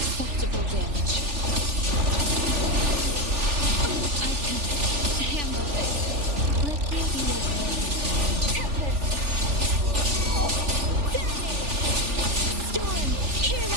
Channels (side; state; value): left; late; 3.4 ms